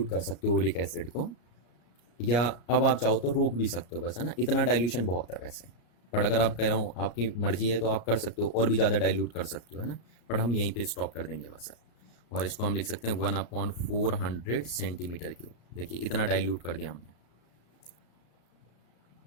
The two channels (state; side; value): late; right; 34 ms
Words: कर सकते हो ओइलिक एसिड को, या अब आप चाहो तो रोक भी सकते हो, बस, है ना। इतना डाइल्यूशन बहुत है वैसे, पर अगर आप कह रहा हूँ आपकी मर्जी है तो आप कर सकते हो, और भी ज़्यादा डाइल्यूट कर सकते हो, है ना। पर हम यहीं पे स्टॉप कर देंगे बस। और इसको हम लिख सकते हैं 1/400 सेंटीमीटर क्यूब। देखिए इतना डाइल्यूट कर दिया हमने।